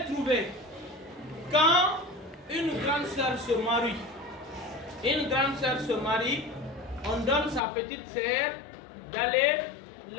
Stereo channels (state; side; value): drops out; right; at 7.6 s